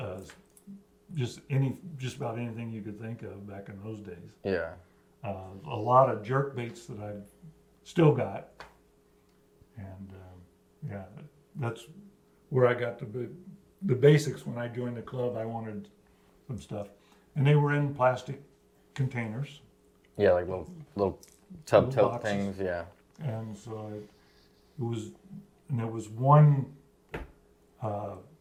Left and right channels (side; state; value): both; identical; correlation 1.00